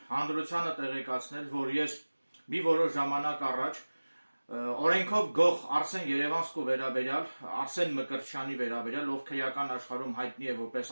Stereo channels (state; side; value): inverted; both; correlation -1.00